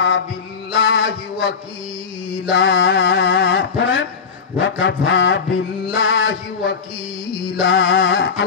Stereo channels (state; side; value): quieter; right; 5.8 dB